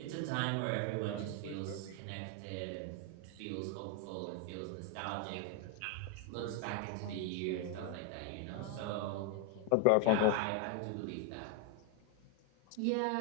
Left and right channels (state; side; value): different; both; correlation 0.01